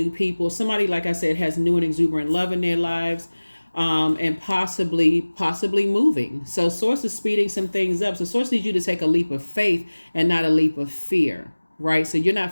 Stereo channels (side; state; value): both; inverted; correlation -1.00